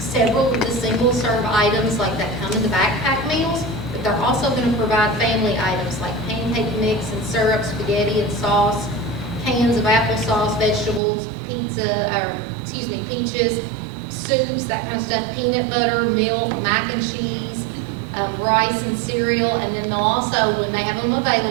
of the single-serve items like that come in the backpack meals, but they're also going to provide family items like pancake mix and syrup, spaghetti and sauce, cans of applesauce, vegetables, peaches, soups, that kind of stuff, peanut butter, milk, mac and cheese, rice and cereal, and then they'll also, when they have them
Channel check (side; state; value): left; drops out; at 11.0 s